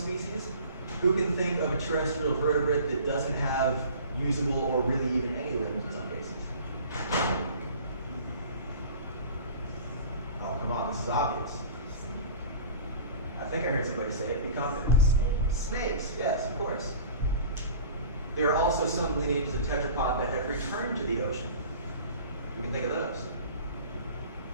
Who can think of a terrestrial vertebrate that doesn't have usable or really even any limbs in some cases? Oh, come on, this is obvious. I think I heard somebody say it. Be confident. Snakes, yes, of course. There are also some lineages of tetrapod that have returned to the ocean. We can think of those.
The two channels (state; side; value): inverted; both; correlation -0.43